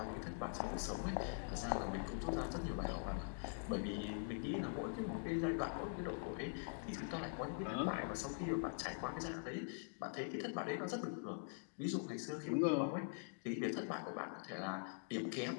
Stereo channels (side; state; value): right; silent; digital silence